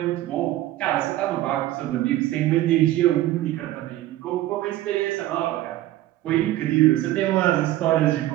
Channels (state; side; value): quieter; left; 15.1 dB